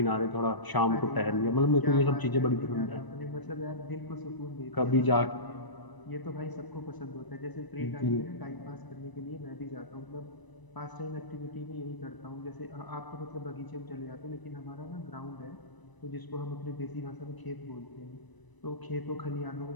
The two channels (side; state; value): right; late; 1.0 ms